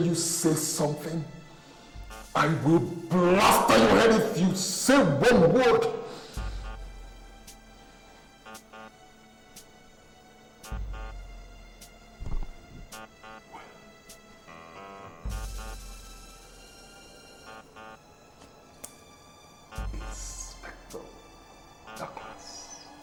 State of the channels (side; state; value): both; identical; correlation 1.00